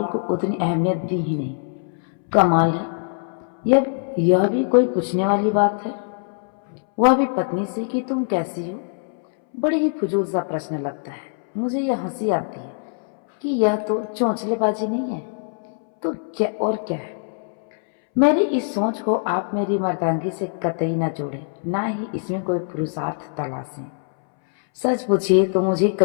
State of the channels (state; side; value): silent; right; 63 dB below the other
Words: को उतनी अहमियत दी ही नहीं। कमाल है, यह भी कोई पूछने वाली बात है, वह भी पत्नी से कि तुम कैसी हो। बड़ी ही फजूल सा प्रश्न लगता है। मुझे यह हंसी आती है कि यह तो चौंचलेबाजी नहीं है तो क्या और क्या है। मेरी इस सोच को आप मेरी मर्दांगी से कतई न जोड़ें, ना ही इसमें कोई पुरुषार्थ तलाशें। सच पूछिए तो मुझे